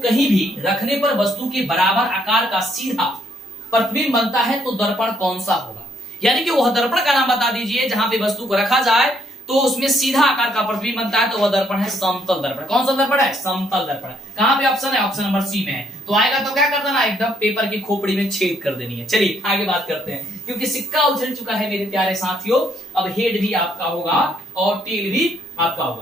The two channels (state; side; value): normal; both; correlation 0.70